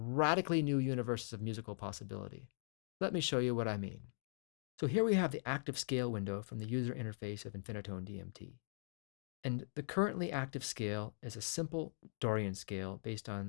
new universes of musical possibility. Let me show you what I mean. So here we have the active scale window from the user interface of Infinitone DMT. And the currently active scale is a simple Dorian scale based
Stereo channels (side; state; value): right; silent; digital silence